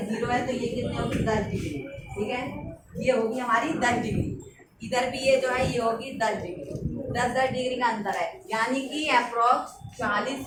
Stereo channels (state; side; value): identical; both; correlation 1.00